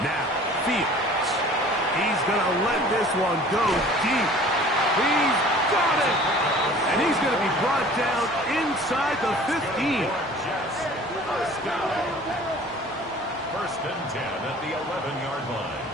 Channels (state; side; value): normal; both; correlation 0.47